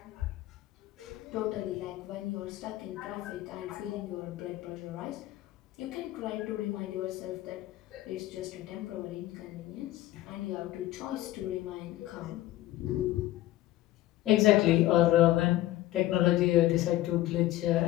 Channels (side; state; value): right; quieter; 15.6 dB